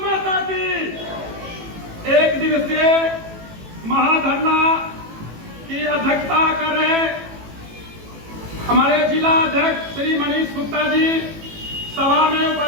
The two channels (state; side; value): late; left; 18 ms